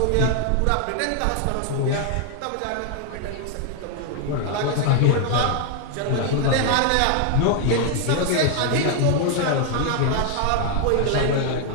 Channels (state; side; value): different; both; correlation 0.00